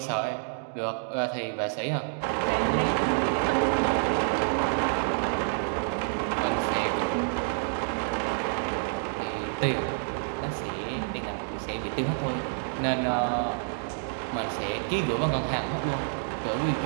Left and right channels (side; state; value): left; silent; digital silence